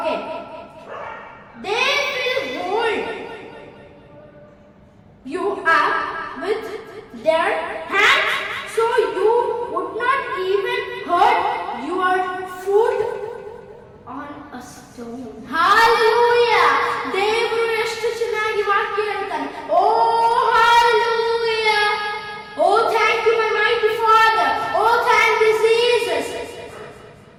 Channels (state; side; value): identical; both; correlation 1.00